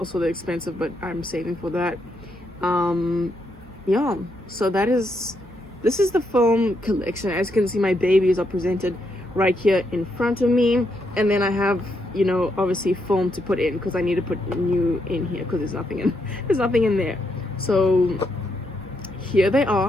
they're expensive, but I'm saving for that. Yeah, so this is the film collection. As you can see, my babies are presented right here in front of me, and then I have, you know, obviously film to put in, because I need to put new in here because there's nothing in there. So here they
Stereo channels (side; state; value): both; normal; correlation 0.79